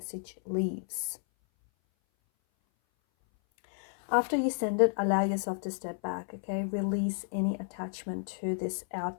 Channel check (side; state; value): right; silent; 57 dB below the other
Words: leaves. After you send it, allow yourself to step back, okay? Release any attachment to this